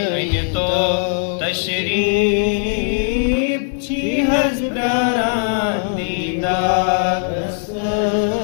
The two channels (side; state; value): right; silent; digital silence